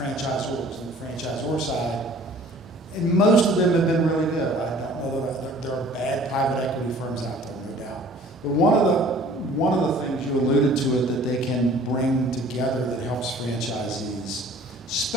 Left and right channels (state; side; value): normal; both; correlation 0.51